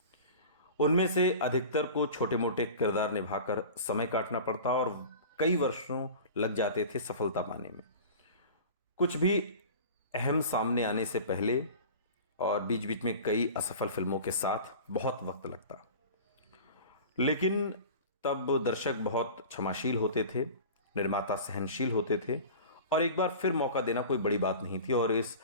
उनमें से अधिकतर को छोटे मोटे किरदार निभाकर समय काटना पड़ता और कई वर्षों लग जाते थे सफलता पाने में। कुछ भी अहम सामने आने से पहले और बीच बीच में कई असफल फिल्मों के साथ बहुत वक्त लगता, लेकिन तब दर्शक बहुत क्षमाशील होते थे। निर्माता सहनशील होते थे और एक बार फिर मौका देना कोई बड़ी बात नहीं थी। और इस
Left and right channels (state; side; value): inverted; both; correlation -0.37